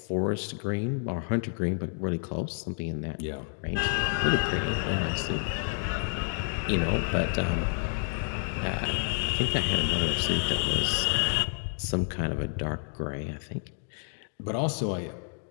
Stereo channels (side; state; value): right; silent; 58 dB below the other